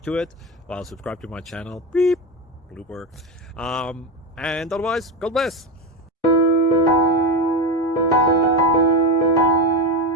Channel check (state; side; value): normal; both; correlation 0.16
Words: to it. Well, subscribe to my channel. Beep. Blooper. And otherwise, God bless.